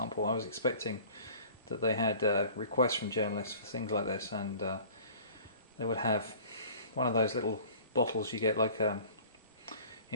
I was expecting that they had requests from journalists for things like this, and they would have one of those little bottles you get like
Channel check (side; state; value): both; inverted; correlation -0.46